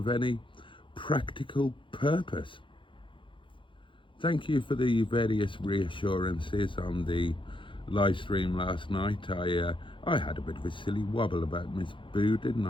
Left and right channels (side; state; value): right; late; 0.24 ms